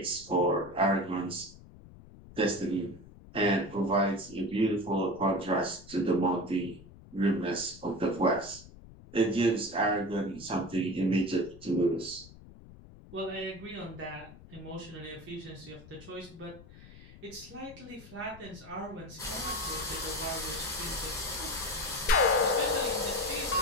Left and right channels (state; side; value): noise; left; rumble, 19 dB below the sound